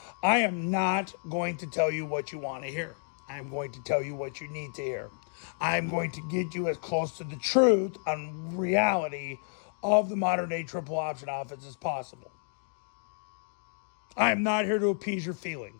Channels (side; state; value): right; silent; digital silence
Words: I am not going to tell you what you want to hear. I'm going to tell you what you need to hear. I'm going to get you as close to the truth on reality of the modern day triple option offense as possible. I am not here to appease your